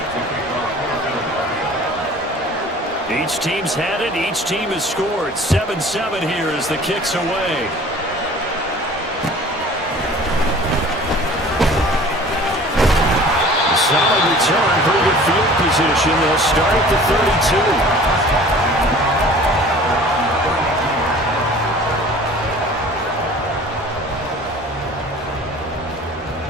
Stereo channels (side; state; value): both; normal; correlation 0.46